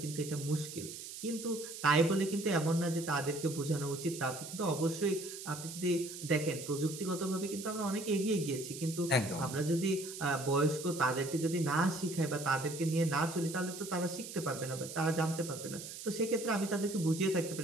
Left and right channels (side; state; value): right; noise; hiss, 10 dB below the sound